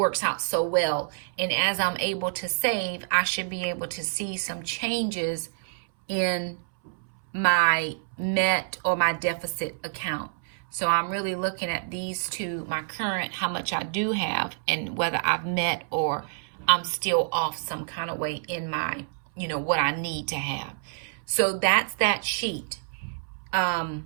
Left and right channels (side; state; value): left; silent; 60 dB below the other